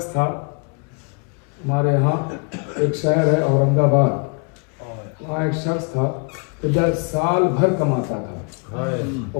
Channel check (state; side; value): quieter; right; 35.6 dB